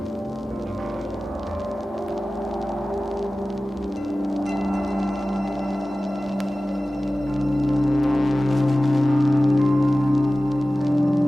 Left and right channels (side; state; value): both; normal; correlation 0.96